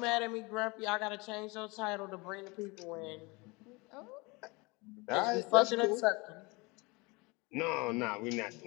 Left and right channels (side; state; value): right; quieter; 26.2 dB